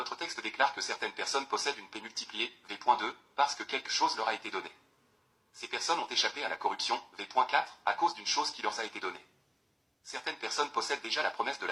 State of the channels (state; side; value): identical; both; correlation 1.00